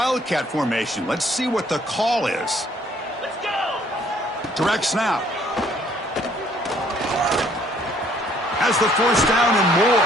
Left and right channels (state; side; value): normal; both; correlation 0.62